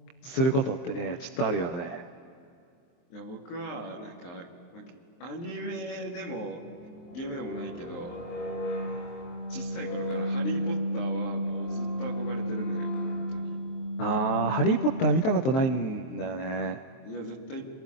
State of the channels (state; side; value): late; right; 23 ms